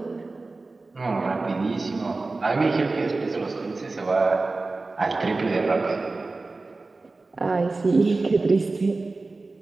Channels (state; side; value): quieter; left; 3.5 dB